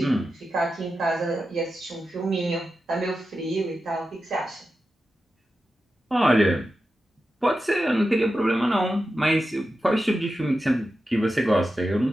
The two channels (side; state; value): both; normal; correlation 0.91